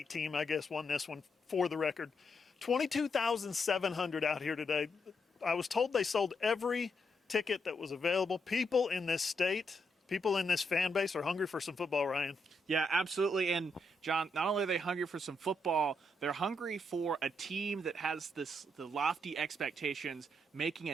team, I guess, won this one for the record. 22,700 out here today. I was told they sold every ticket that was available. People in this state, people in this fan base are hungry for some football, Ryan. Yeah, absolutely. And John, not only are they hungry for some football, they're hungry for a team that has the lofty expectations, making a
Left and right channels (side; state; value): both; normal; correlation 0.79